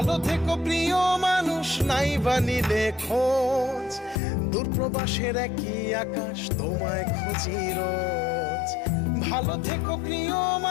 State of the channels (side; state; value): right; drops out; at 4.2 s